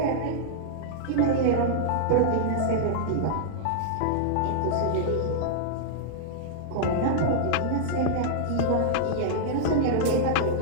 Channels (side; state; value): both; different; correlation -0.01